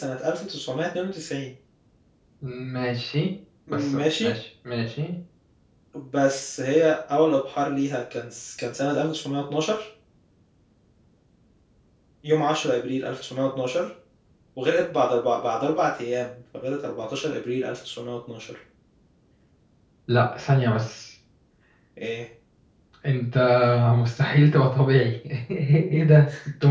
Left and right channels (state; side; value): identical; both; correlation 1.00